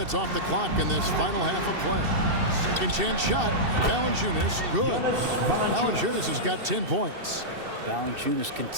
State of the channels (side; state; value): left; late; 2.7 ms